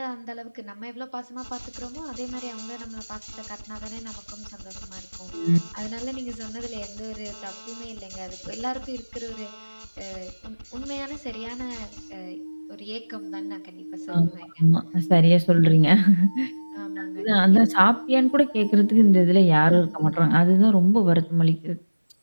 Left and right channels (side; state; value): both; inverted; correlation -1.00